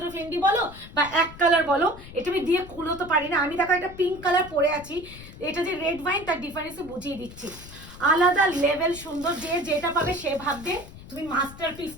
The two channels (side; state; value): left; noise; rumble, 16 dB below the sound